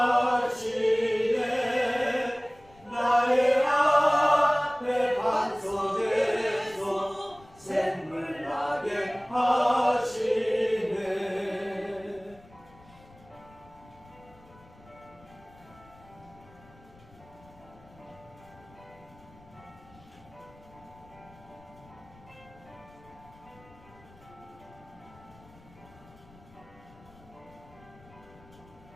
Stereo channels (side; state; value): left; noise; rumble, 25 dB below the sound